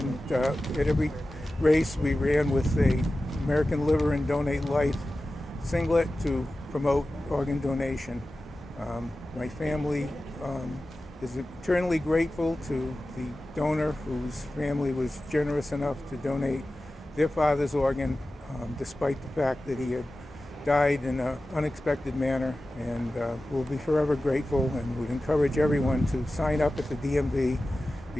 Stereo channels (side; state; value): both; normal; correlation 0.95